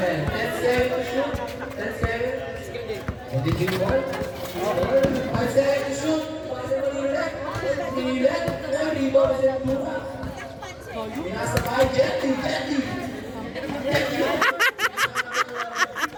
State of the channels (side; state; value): both; identical; correlation 1.00